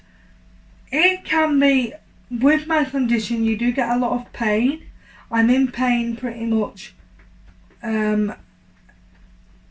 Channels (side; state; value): both; identical; correlation 1.00